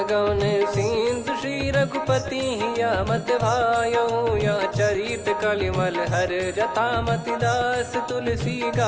गवन सिंधु श्री रघुपति या मत भायो या चरित कलिमल हर जथा मति दास तुलसी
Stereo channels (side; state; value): both; identical; correlation 1.00